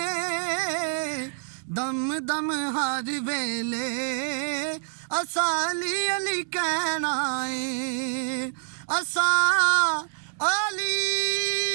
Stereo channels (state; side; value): silent; left; digital silence